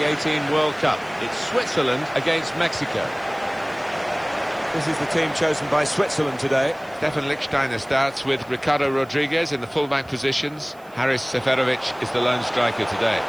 2018 World Cup. It's Switzerland against Mexico. This is the team chosen by Switzerland today. Stefan Lichtsteiner starts with Ricardo Rodriguez in the fullback positions. Haris Seferovic is the lone striker today.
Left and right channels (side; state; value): right; noise; hiss, 28 dB below the sound